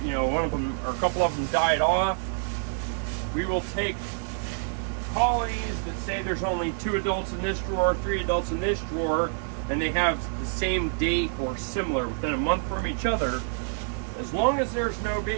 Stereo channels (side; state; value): left; silent; 60 dB below the other